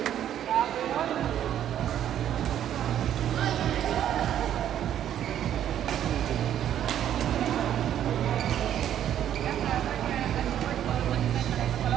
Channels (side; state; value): left; quieter; 10.6 dB